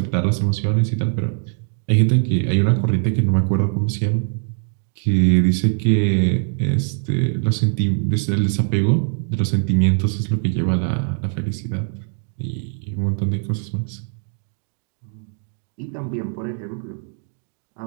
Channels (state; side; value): silent; left; 56 dB below the other